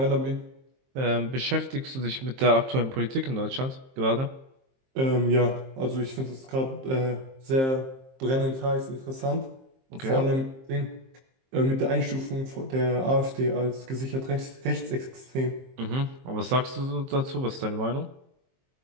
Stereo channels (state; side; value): late; left; 23 ms